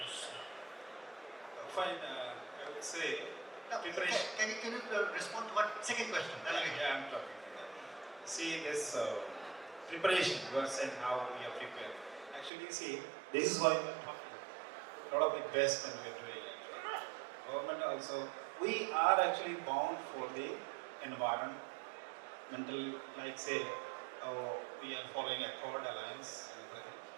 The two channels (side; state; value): left; drops out; at 12.5 s